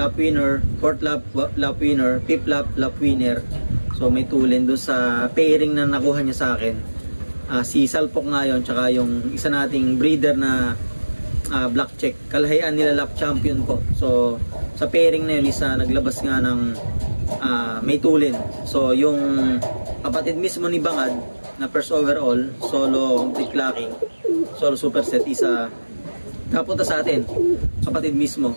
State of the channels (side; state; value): both; inverted; correlation -1.00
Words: winner, fourth lap winner, fifth lap winner. So may tulin doon sa pairing na nakuha niya sa akin. Si Salpok nga yun, tsaka yung isa nating breeder na black check. Kalahian nila lap champion ko. So sa pairing na yun, naglabas nga ng may tulin. So yung kapatid mismo ni Bangad na first overall, solo complete clacking, solo superset, napunta sa atin, kapatid mismo.